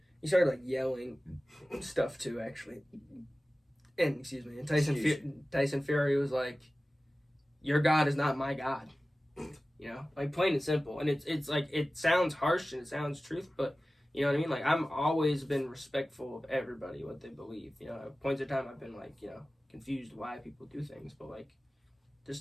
he started, like, yelling stuff, too, actually. And Tyson Fury was like, "Your God is not my God," you know, like, plain and simple. And it's like, it sounds harsh and it sounds truth, but you know what I mean. Like, I'm always been respectful of everybody, what they believe. You know, at points in time I've been, like, you know, confused why people do things, but, like, this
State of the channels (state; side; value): normal; both; correlation 0.96